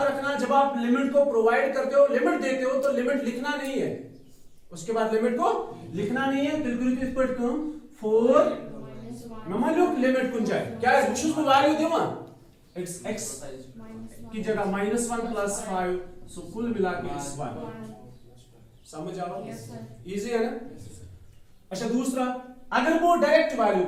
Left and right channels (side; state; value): both; identical; correlation 1.00